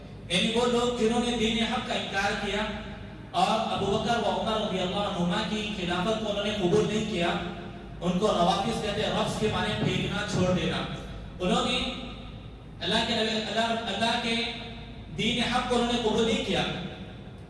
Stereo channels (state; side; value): identical; both; correlation 1.00